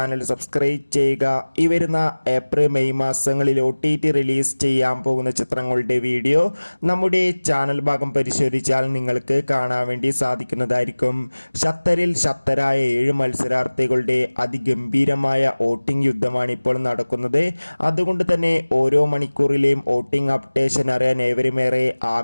സബ്സ്ക്രൈബ് ചെയ്യുക. ഈ വരുന്ന ഏപ്രിൽ മെയ് മാസങ്ങളിൽ OTT റിലീസ് ചെയ്യാൻ പോകുന്ന ചിത്രങ്ങളുടെ വീഡിയോ നമ്മുടെ ചാനൽ ഭാഗം പരിശോധിച്ചാൽ നിങ്ങൾക്ക് കാണാൻ വേണ്ടി സാധിക്കുന്നതായിരിക്കും. ശക്തരിൽ ശക്തരായ 7 മത്സരാർത്ഥികളുടെ അതിഗംഭീരമായ വോട്ടിംഗ് യുദ്ധമാണ് ഇപ്പോൾ നടക്കുന്നത്. അതുകൊണ്ട് തന്നെ ഓരോ മണിക്കൂറിലെയും വോട്ടിംഗ് അപ്ഡേഷൻ അറിയാൻ ഏവരുമേറെ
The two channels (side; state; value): both; inverted; correlation -1.00